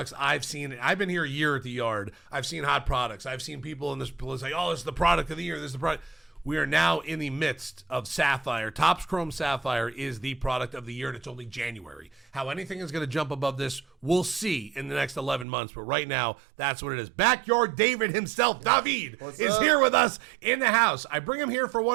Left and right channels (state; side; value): drops out; left; at 15.5 s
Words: I've seen, I've been here a year at the yard. I've seen hot products. I've seen people in this say, oh, this is the product of the year. This is the product. We are now in the midst of Sapphire. Topps Chrome Sapphire is the product of the year, and it's only January. How anything is going to jump above this, we'll see in the next 11 months. But right now, that's what it is. Backyard David himself, David, is here with us in the house. I bring him here for